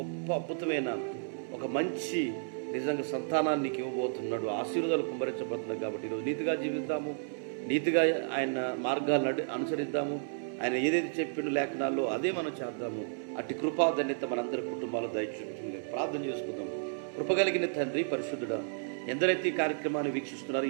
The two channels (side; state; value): left; silent; 55 dB below the other